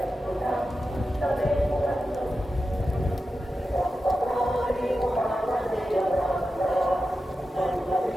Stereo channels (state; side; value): normal; both; correlation 0.92